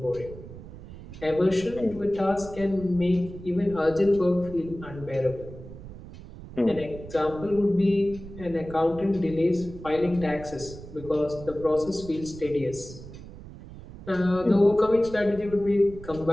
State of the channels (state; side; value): noise; right; rumble, 15 dB below the sound